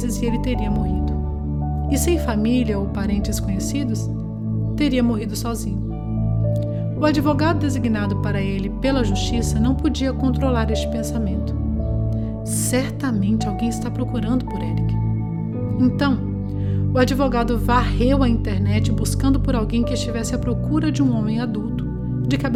e ele teria morrido. E sem família ou parentes conhecidos, teria morrido sozinho. O advogado designado para ele pela justiça não podia controlar este pensamento. Certamente alguém está procurando por Eric. Então, o advogado varreu a internet buscando por alguém que estivesse à procura de um homem adulto, de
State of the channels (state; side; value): identical; both; correlation 1.00